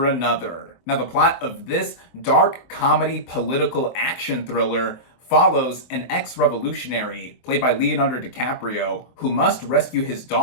Another. Now, the plot of this dark comedy political action thriller follows an ex-revolutionary, played by Leonardo DiCaprio, who must rescue his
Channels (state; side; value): late; right; 24 ms